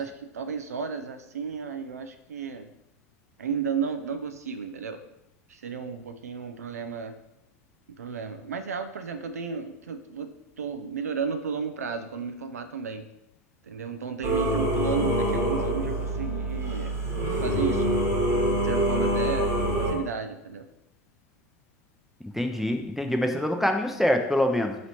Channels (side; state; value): both; normal; correlation 0.23